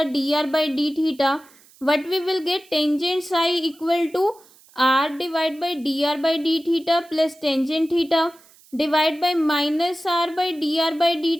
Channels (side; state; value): right; noise; hiss, 27 dB below the sound